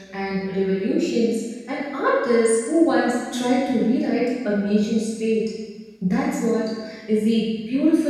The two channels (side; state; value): both; identical; correlation 1.00